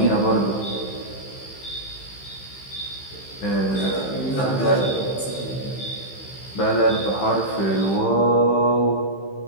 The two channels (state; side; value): late; right; 15 ms